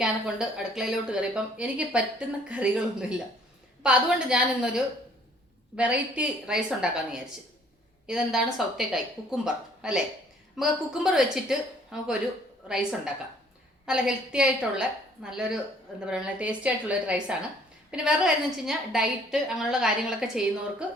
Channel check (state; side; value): normal; both; correlation 0.59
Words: കൊണ്ട് അടുക്കളയിലോട്ട് കയറിയപ്പം എനിക്ക് പറ്റുന്ന കറികളൊന്നുമില്ല. അപ്പം അതുകൊണ്ട് ഞാൻ ഇന്നൊരു വെറൈറ്റി റൈസ് ഉണ്ടാക്കാമെന്ന് വിചാരിച്ചു. ഇതെന്താണ്? സൗത്തേക്കായ് കുക്കുംബർ അല്ലേ? നമുക്ക് കുക്കുംബർ വെച്ചിട്ട് നമുക്കൊരു റൈസ് ഉണ്ടാക്കാം. നല്ല ഹെൽത്തി ആയിട്ടുള്ള നല്ലൊരു എന്താ പറയുക ടേസ്റ്റി ആയിട്ടുള്ള ഒരു റൈസാണ്. പിന്നെ വേറെ കാര്യം എന്ന് വെച്ച് കഴിഞ്ഞാൽ ഡയറ്റ് അങ്ങനെയുള്ള കാര്യങ്ങളൊക്കെ ചെയ്യുന്നവർക്ക്